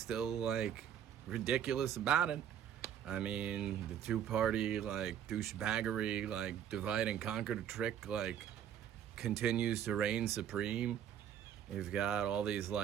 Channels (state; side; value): quieter; left; 9.6 dB